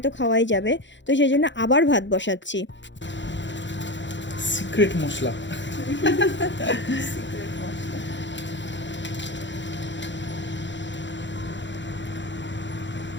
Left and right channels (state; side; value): late; right; 0.53 ms